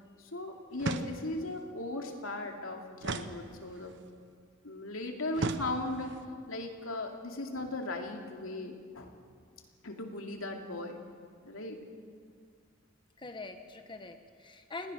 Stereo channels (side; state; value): both; normal; correlation 0.17